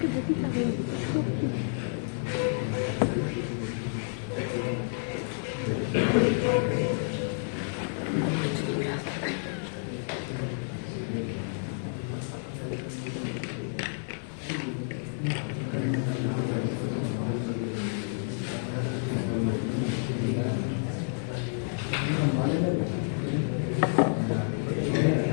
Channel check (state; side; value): silent; right; digital silence